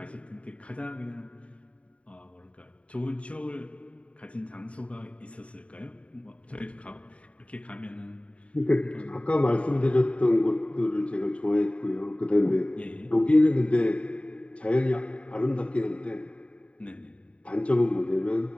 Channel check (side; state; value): right; late; 0.064 ms